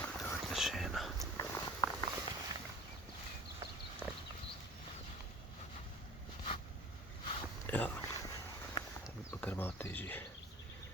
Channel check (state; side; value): normal; both; correlation 0.42